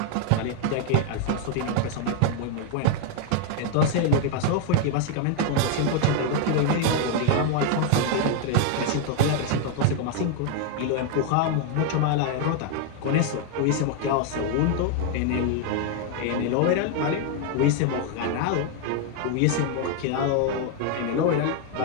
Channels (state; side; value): different; both; correlation 0.01